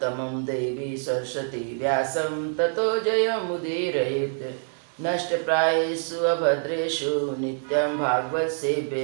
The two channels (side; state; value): left; silent; 61 dB below the other